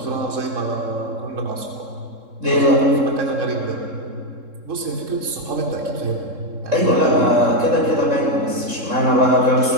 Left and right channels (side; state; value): left; late; 3.7 ms